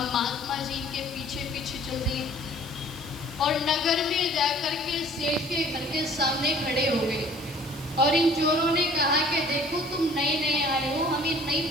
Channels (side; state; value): right; noise; hiss, 18 dB below the sound